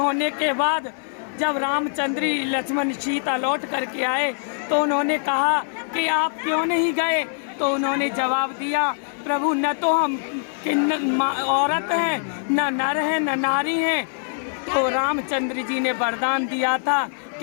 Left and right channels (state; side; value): silent; right; 58 dB below the other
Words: के बाद जब रामचंद्र लक्ष्मण सीता लौट करके आए तो उन्होंने कहा कि आप क्यों नहीं गए? तो उन्होंने जवाब दिया, प्रभु न तो हम औरत हैं, न नर हैं, न नारी हैं। तो रामचंद्र जी ने वरदान दिया था